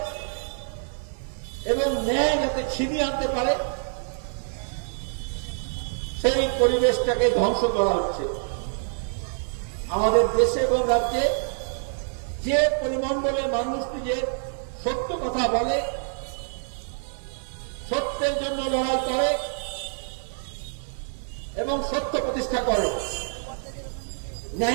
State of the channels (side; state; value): left; silent; 61 dB below the other